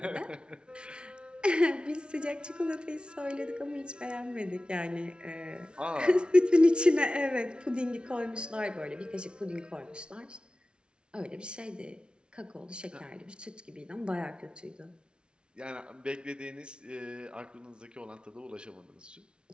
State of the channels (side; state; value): left; late; 0.056 ms